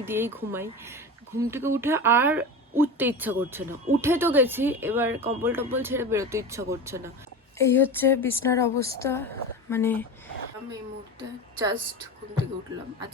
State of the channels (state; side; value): normal; both; correlation 0.27